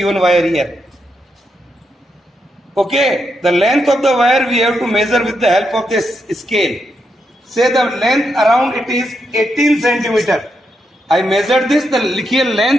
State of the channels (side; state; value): both; normal; correlation 0.83